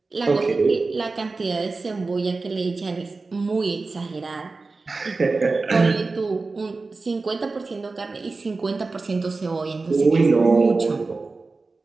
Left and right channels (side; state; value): left; quieter; 3.8 dB